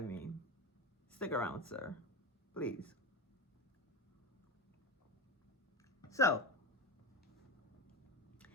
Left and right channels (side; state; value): both; normal; correlation 0.22